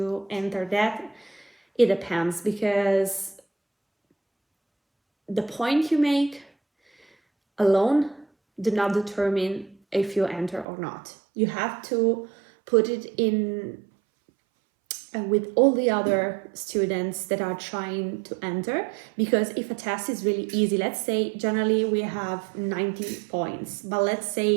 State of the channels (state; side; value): drops out; left; at 10.7 s